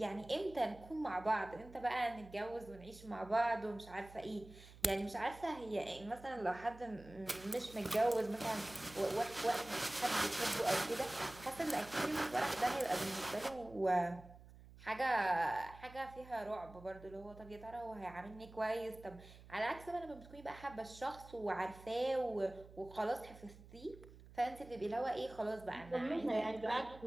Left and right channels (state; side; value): noise; right; hum, 19 dB below the sound